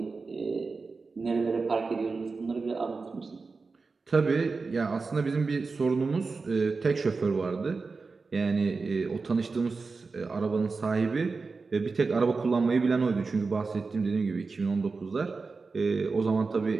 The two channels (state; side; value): quieter; left; 4.3 dB